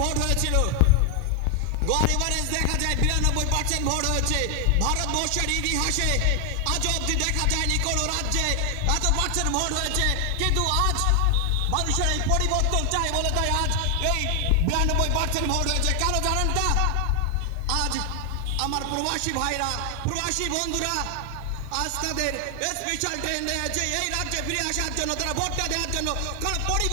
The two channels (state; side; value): different; both; correlation 0.00